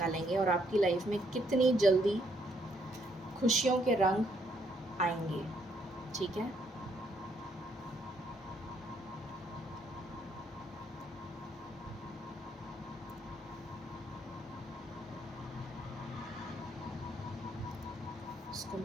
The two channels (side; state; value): both; normal; correlation 0.71